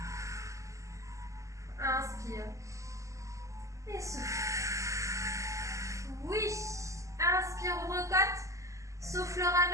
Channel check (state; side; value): late; left; 0.16 ms